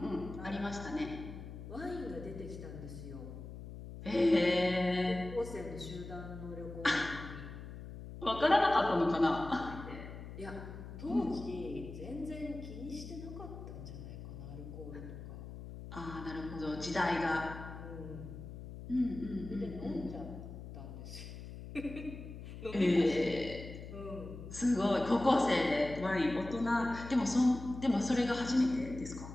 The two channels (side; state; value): left; noise; hum, 11 dB below the sound